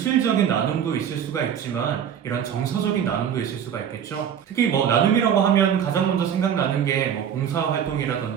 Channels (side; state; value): left; quieter; 8.7 dB